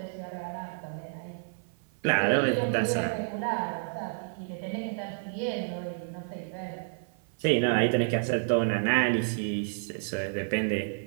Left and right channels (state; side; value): silent; left; 55 dB below the other